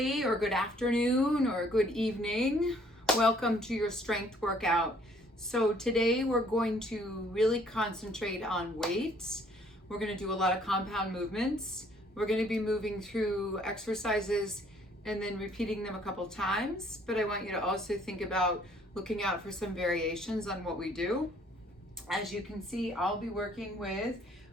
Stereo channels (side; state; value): both; normal; correlation 0.61